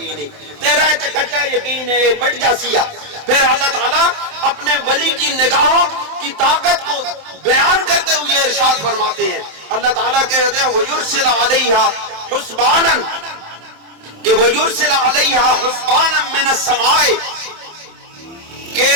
ہی، تیرا تے کچا یقین ہے مٹ جا سیا۔ پھر اللہ تعالیٰ اپنے ولی کی نگاہوں کی طاقت کو بیان کرتے ہوئے ارشاد فرماتے ہیں، اللہ تعالیٰ کہتے ہیں وَيُرْسِلَ عَلَيْهَا حُسْبَانًا، کہ وَيُرْسِلَ عَلَيْهَا حُسْبَانًا مِّنَ السَّمَاءِ، کہ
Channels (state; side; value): late; left; 27 ms